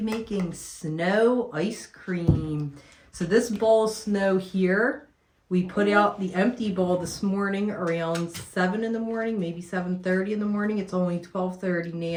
making snow ice cream. So this bowl of snow here, we put out the empty bowl this morning around 7 in the morning, maybe 7:30 in the morning. It's only 12:30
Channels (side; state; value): both; identical; correlation 1.00